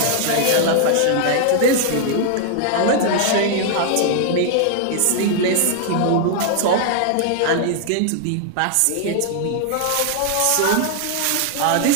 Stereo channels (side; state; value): both; different; correlation 0.00